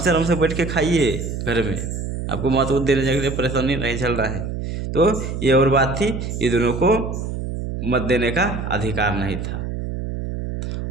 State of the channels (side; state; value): right; noise; hum, 5 dB below the sound